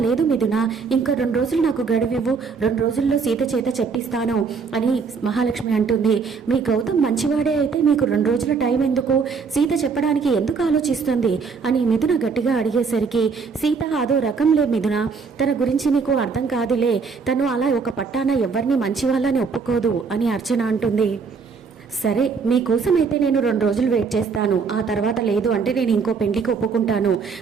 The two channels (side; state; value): left; quieter; 5.3 dB